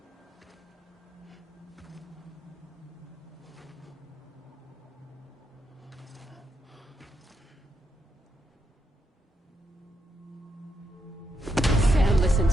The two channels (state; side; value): normal; both; correlation 0.81